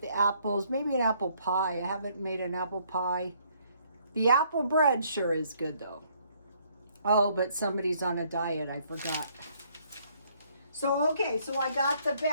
apples, maybe an apple pie. I haven't made an apple pie. The apple bread sure is good, though. Oh, but somebody's on a diet. I forgot. So, okay, so I got the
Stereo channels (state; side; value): inverted; both; correlation -0.66